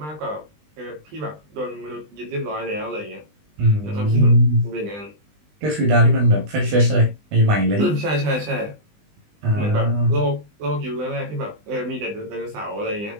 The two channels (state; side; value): late; left; 20 ms